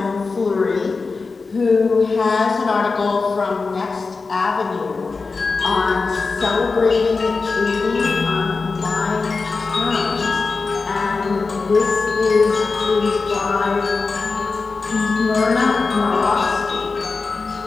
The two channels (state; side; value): quieter; right; 4.3 dB